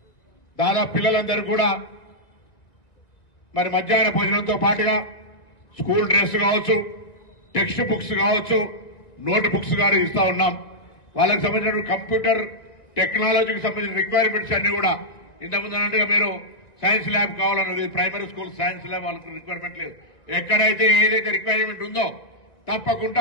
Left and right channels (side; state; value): right; late; 1.9 ms